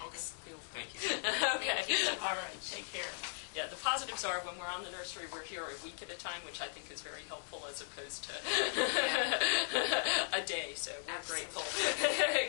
You'll- Thank you. Okay. Thank you so All right. much. Take care. Yeah, the positives are when we're on the nursery, we're here a week at a time, which I think is very helpful as opposed to a day. So we're Absolutely.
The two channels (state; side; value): silent; right; digital silence